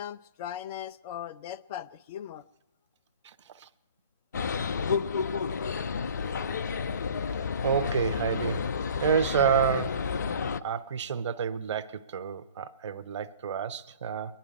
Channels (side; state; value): both; inverted; correlation -0.47